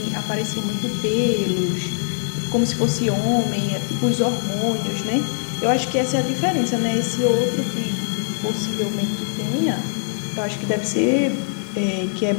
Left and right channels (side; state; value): right; silent; digital silence